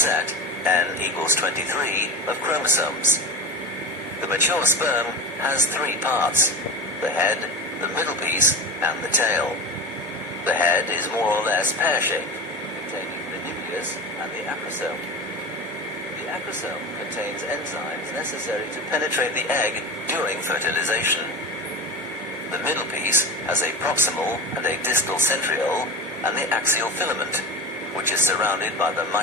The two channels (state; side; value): normal; both; correlation 0.26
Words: n equals 23, of chromosomes. The mature sperm has three parts: the head, the middle piece, and the tail. The head is more or less pear-shaped, containing the nucleus and the acrosome. The acrosome contains enzymes necessary to penetrate the egg during fertilization. The middle piece has a proximal and a distal centriole and the axial filament, which is surrounded by the